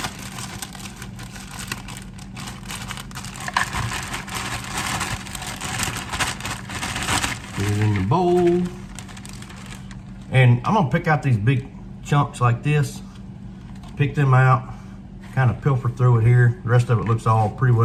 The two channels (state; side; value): identical; both; correlation 1.00